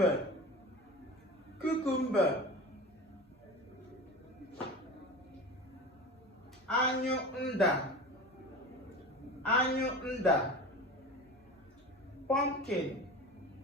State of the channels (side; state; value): both; normal; correlation 0.33